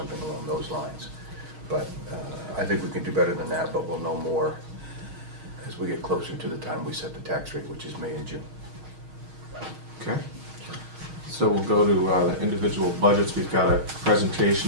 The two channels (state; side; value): late; left; 6.4 ms